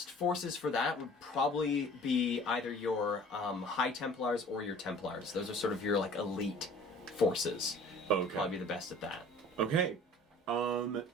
forces for that would probably be either your High Templars or your Templars. Those are sort of your like elite forces. Okay. Probably be the best at that. Okay.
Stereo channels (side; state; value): both; normal; correlation 0.48